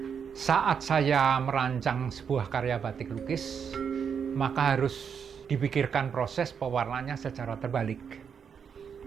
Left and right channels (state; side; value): quieter; left; 7.0 dB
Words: saat saya merancang sebuah karya batik lukis, maka harus dipikirkan proses pewarnanya secara terbalik.